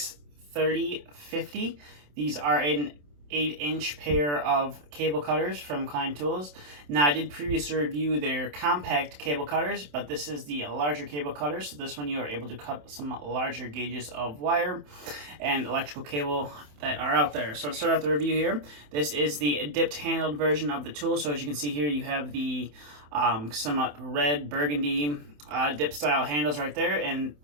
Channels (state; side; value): late; left; 27 ms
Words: These are an 8-inch pair of cable cutters from Klein Tools. Now I did previously review their compact cable cutters, but this is the larger cable cutter. So this one you are able to cut some larger gauges of wire and electrical cable that are out there. So to start off the review here, this is the dipped handled version of the tool. So as you can see here, you have the somewhat red burgundy dip style handles right there, and